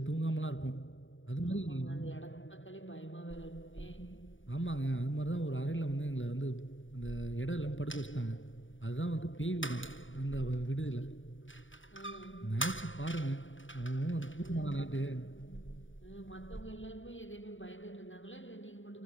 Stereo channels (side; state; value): right; late; 0.56 ms